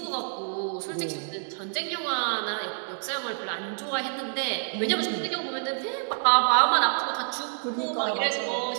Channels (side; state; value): left; silent; digital silence